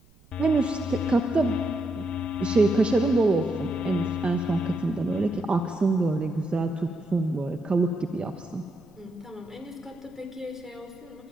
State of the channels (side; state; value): right; noise; rumble, 29 dB below the sound